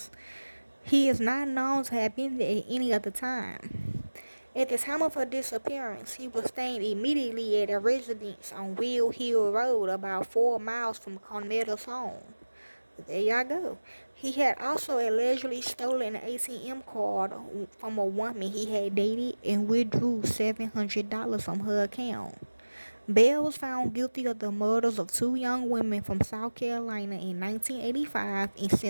He is not known to have been there at any other time. At the time of her disappearance, he was staying immediately at a residence on Will Hill Road, about 4 miles from Carmela's home. There y'all go. He had also allegedly stolen an ATM card from a woman he had dated and withdrew $700 from her account. Bell was found guilty of the murders of 2 young women from South Carolina in 1985 and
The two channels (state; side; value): inverted; both; correlation -1.00